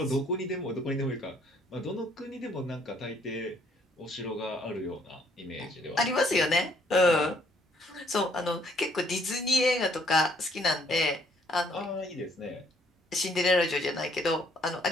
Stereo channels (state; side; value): normal; both; correlation 0.65